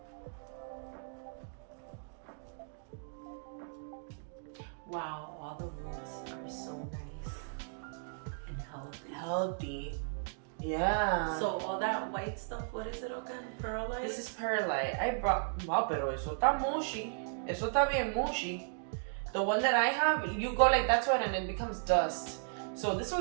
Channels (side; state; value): left; silent; digital silence